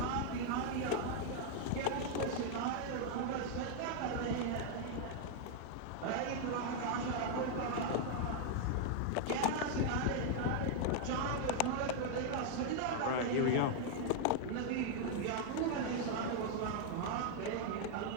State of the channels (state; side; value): different; both; correlation 0.00